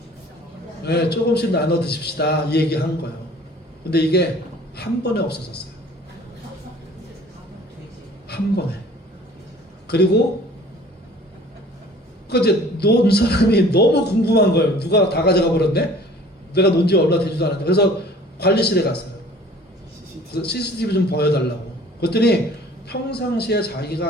네, 조금씩 나눠 드십시다. 이 얘기 한 거예요. 근데 이게 한 번에 없어졌어요. 한 번에. 그리고 그 이제 논 사람이 너무 궁금한 거예요. 누가 다 가져가 버렸네? 내가 논지 얼마 되지도 않았는데. 그래서 관리실에 갔어요. 그래서 CCTV 좀 보여달라고. 그랬더니 평상시에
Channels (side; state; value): both; normal; correlation 0.50